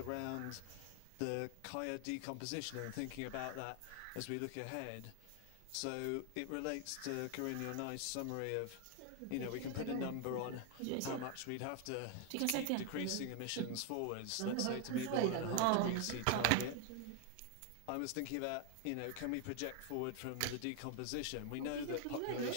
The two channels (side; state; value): both; different; correlation 0.01